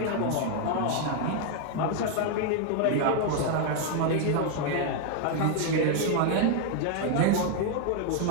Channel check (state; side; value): different; both; correlation 0.00